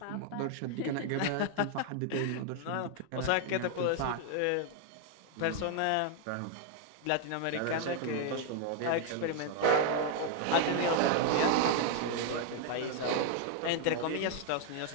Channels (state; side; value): different; both; correlation 0.00